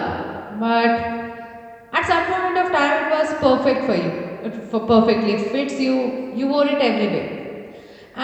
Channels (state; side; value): identical; both; correlation 1.00